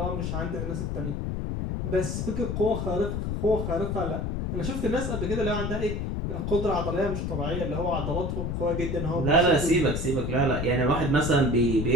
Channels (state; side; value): noise; left; rumble, 2 dB below the sound